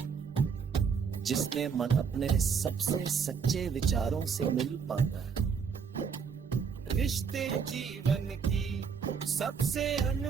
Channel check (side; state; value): left; quieter; 6.4 dB